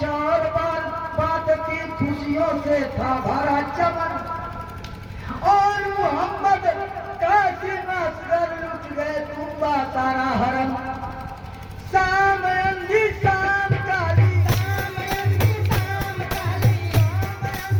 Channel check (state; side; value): identical; both; correlation 1.00